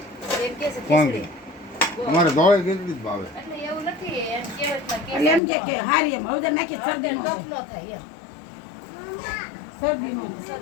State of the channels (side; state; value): right; drops out; at 5.4 s